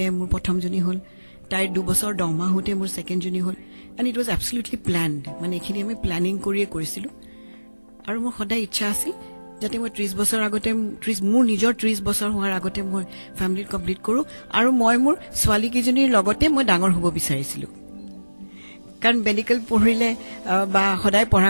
মোৰ প্ৰথমজনী হ'ল তাইৰ 2 বছৰ 10 মাহ হওঁতে মোৰ ছেকেণ্ডজনী হ'ল এণ্ড ইট ৱাজ এবছলিউটলি প্লেনড মানে এইখিনি আমি প্লেনিং কৰিয়ে কৰিছিলোঁ আৰু মোৰ সদায় ইচ্ছা আছিল যাতে মই 30 বছৰ আগতে মোৰ নিজৰ 30 বছৰ হোৱাৰ আগতে মই ফেমিলি কমপ্লিট কৰোঁ আৰু মই মোৰ ছোৱালীকেইজনীৰ লগতে মই ডাঙৰ হ'ব বিচাৰিছিলোঁ কাৰণ মেডিকেল পঢ়িলে বা সদায় পঢ়া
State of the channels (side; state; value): both; inverted; correlation -1.00